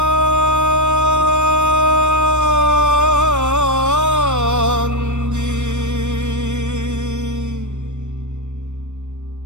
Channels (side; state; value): left; late; 0.84 ms